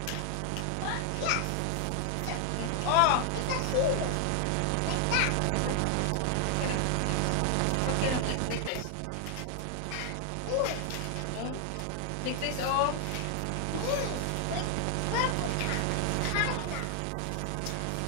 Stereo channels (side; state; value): both; different; correlation 0.00